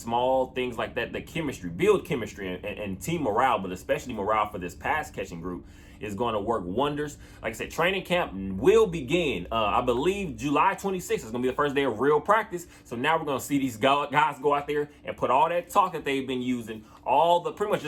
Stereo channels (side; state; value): both; identical; correlation 1.00